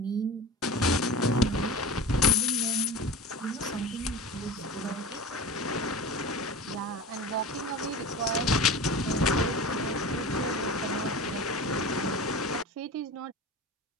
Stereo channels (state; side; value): normal; both; correlation 0.32